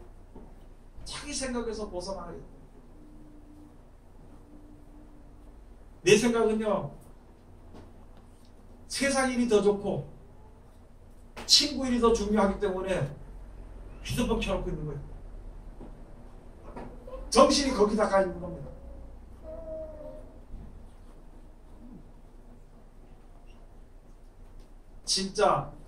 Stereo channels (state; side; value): identical; both; correlation 1.00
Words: 자기 생각에서 벗어나야 돼요. 내 생각은요, 세상 일이 더 좋고 친구 일이 더 중요하기 때문에 휴대폰 켜놓고 있는 거예요. 정신이 거기다 가 있는 겁니다. 진짜